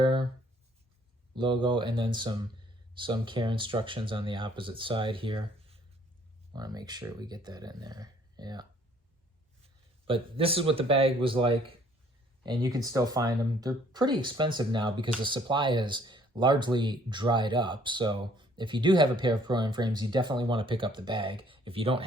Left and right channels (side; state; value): both; normal; correlation 0.60